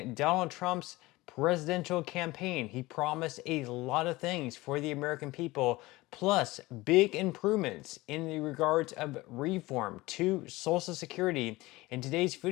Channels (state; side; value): quieter; right; 20.1 dB